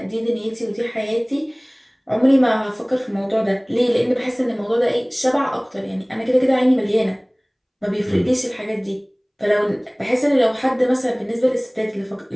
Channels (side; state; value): both; identical; correlation 1.00